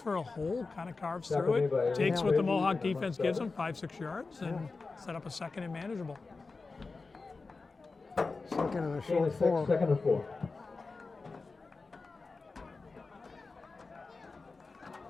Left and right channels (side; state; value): right; quieter; 4.0 dB